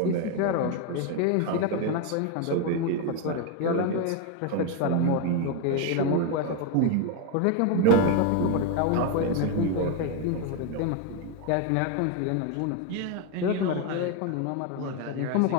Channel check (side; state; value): both; different; correlation 0.01